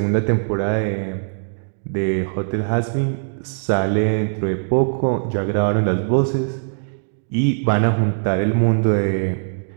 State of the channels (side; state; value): left; silent; digital silence